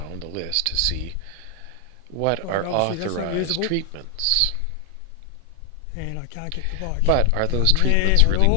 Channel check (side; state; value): both; different; correlation 0.00